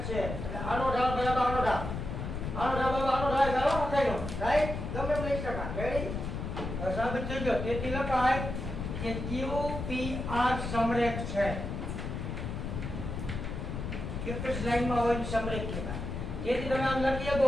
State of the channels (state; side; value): noise; left; rumble, 5 dB below the sound